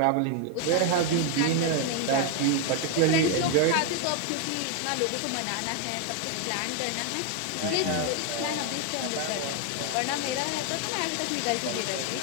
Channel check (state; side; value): different; both; correlation 0.01